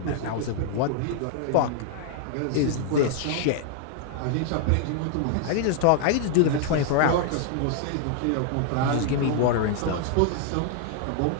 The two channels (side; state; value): both; different; correlation 0.00